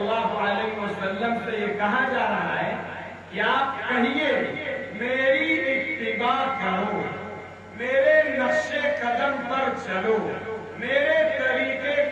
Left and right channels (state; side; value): identical; both; correlation 1.00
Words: علیہ وسلم سے یہ کہا جا رہا ہے کہ آپ کہیے میری اتباع کرو، میرے نقش قدم پر چلو، میرے طریقے